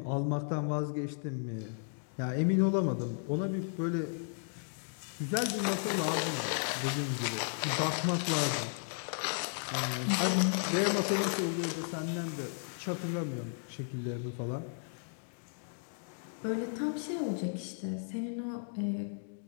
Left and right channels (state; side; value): silent; right; digital silence